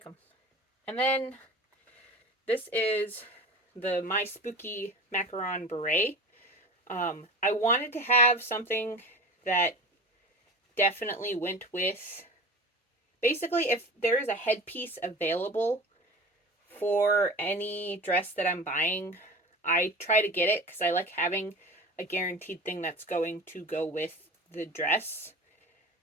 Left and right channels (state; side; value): normal; both; correlation 0.34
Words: them. And then this is the My Spooky Macaron Beret. I wanted to have something that definitely went with basically, if there is a headpiece available for any dress that I'm buying, I try to get it because I like having a guaranteed thing that's going to go with the dress.